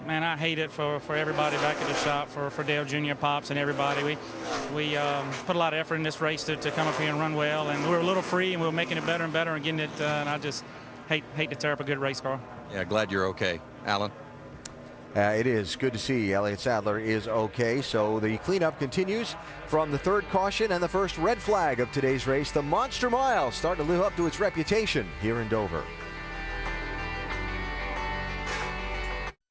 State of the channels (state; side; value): identical; both; correlation 1.00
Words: hate it for everybody back at the shop, for Dale Jr., Pops, and everybody. We put a lot of effort in this race to come up here and run well, and we were a little free, and we were making it better and better and getting it, and I just hate to tear up a good race car. Yeah, glad you're okay. Alan? It is good to see Elliott Sadler is okay. So the cleanup continues from the third caution and the first red flag of today's race. The Monster Mile starting to live up to its reputation here in Dover.